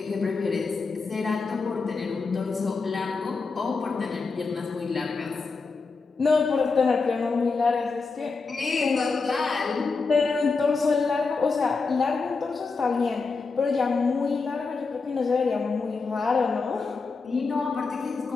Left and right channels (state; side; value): quieter; right; 4.4 dB